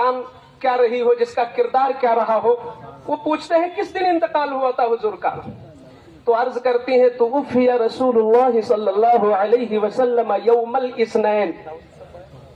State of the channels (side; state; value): both; identical; correlation 1.00